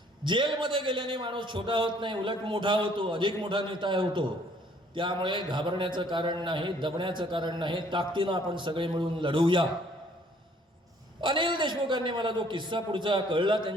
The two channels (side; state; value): both; normal; correlation 0.60